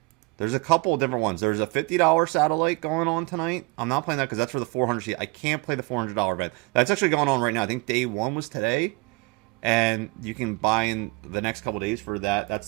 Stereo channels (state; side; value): quieter; left; 26.1 dB